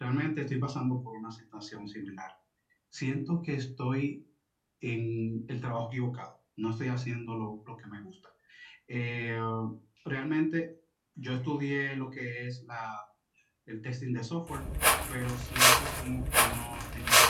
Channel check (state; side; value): identical; both; correlation 1.00